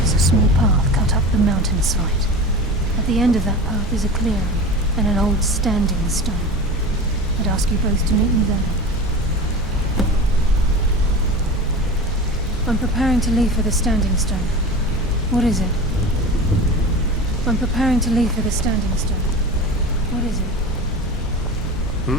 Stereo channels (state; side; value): normal; both; correlation 0.32